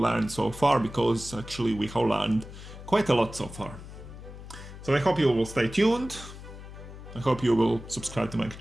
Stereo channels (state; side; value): noise; left; hum, 14 dB below the sound